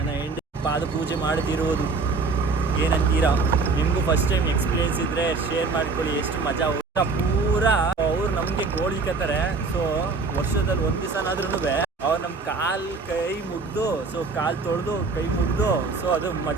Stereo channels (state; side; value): quieter; left; 4.1 dB